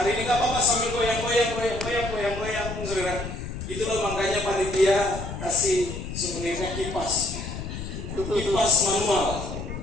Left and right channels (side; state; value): left; noise; rumble, 8 dB below the sound